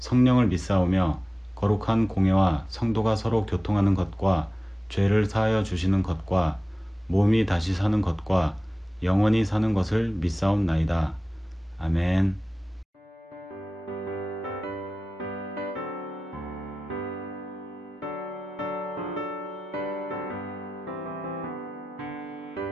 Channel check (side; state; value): both; normal; correlation 0.95